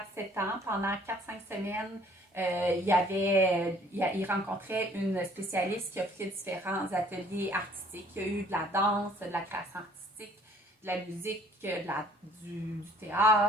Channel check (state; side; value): normal; both; correlation 0.57